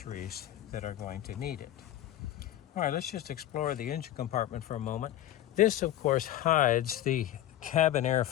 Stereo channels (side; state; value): right; quieter; 12.9 dB